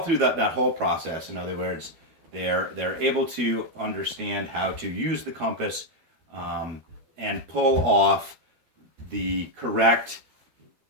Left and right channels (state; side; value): late; left; 12 ms